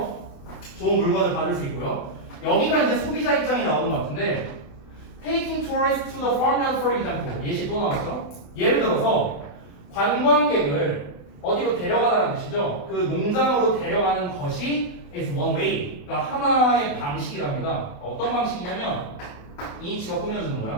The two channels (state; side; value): late; right; 28 ms